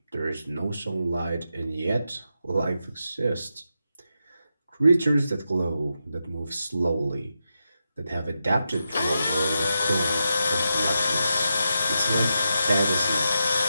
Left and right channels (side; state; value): both; inverted; correlation -0.87